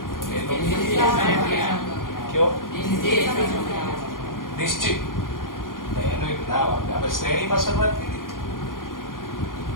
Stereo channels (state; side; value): late; right; 0.90 ms